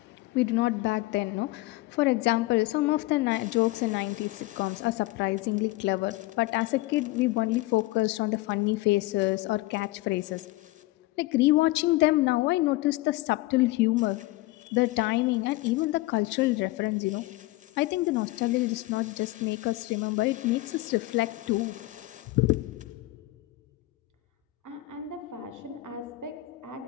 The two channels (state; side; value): quieter; right; 19.2 dB